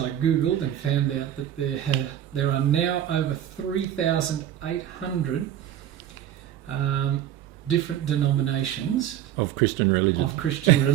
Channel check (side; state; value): left; quieter; 11.2 dB